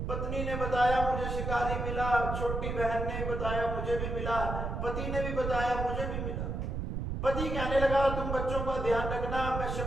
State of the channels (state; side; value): noise; right; rumble, 3 dB below the sound